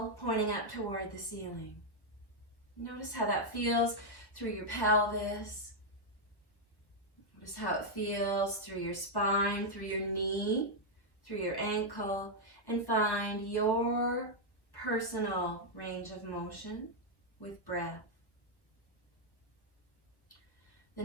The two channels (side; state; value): right; late; 1.2 ms